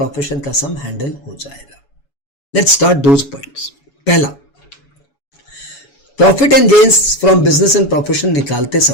का सम हैंडल हो जाएगा। Let's start those points. पहला, profit and gains from business and profession निकालते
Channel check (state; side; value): late; right; 7.1 ms